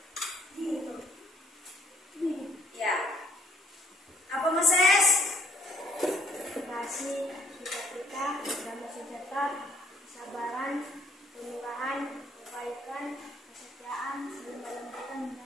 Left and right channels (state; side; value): normal; both; correlation 0.65